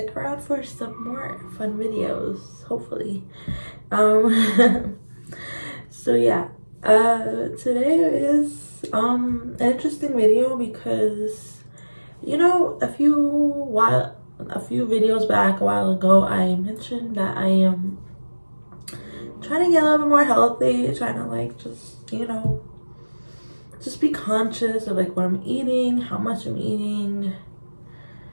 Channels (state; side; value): inverted; both; correlation -1.00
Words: around for some more fun videos, hopefully. So yeah, today is an interesting video because a few videos back a while ago I mentioned that I am trying to get a little bit more healthy, trying to like just be conscious of like what I'm eating, how much I'm eating,